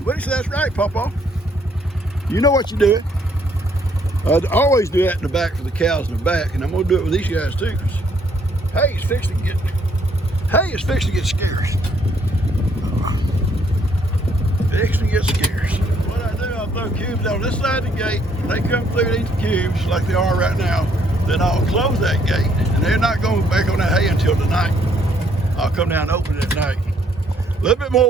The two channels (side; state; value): both; normal; correlation 0.68